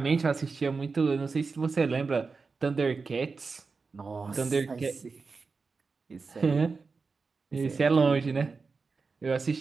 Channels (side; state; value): left; quieter; 4.6 dB